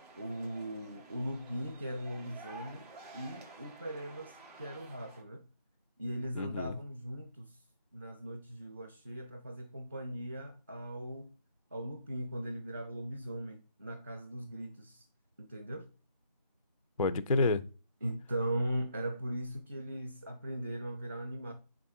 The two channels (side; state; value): both; inverted; correlation -0.74